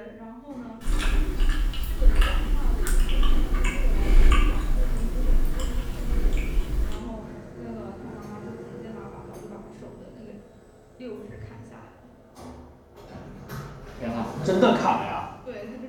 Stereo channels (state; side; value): identical; both; correlation 1.00